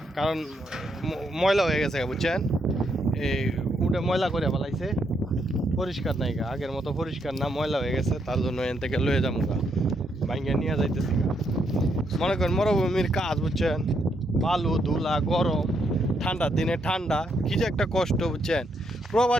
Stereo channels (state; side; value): normal; both; correlation 0.77